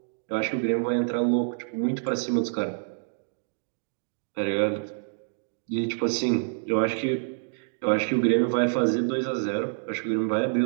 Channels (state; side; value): silent; left; digital silence